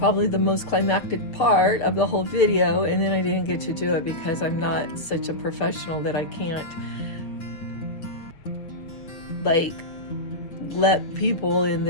the most climactic part of the whole video, and then I didn't get to do it because I'm not such a professional that I can't, like, let people in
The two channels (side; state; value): right; late; 6.9 ms